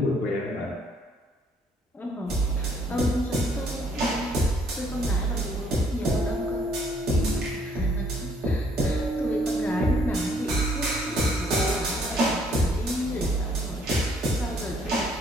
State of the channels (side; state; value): both; normal; correlation 0.64